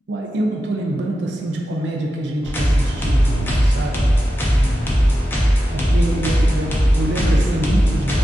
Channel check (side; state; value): both; normal; correlation 0.91